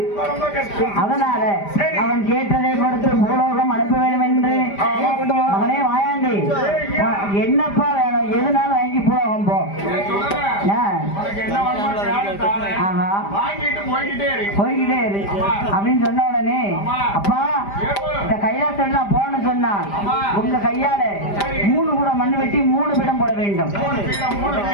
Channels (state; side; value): late; right; 5.0 ms